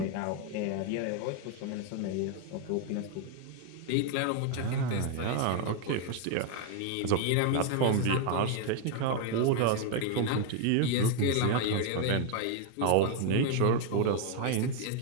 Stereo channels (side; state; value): both; different; correlation 0.01